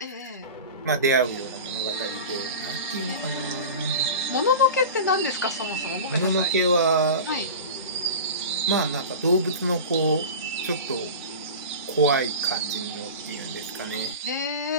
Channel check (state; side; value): inverted; both; correlation -0.31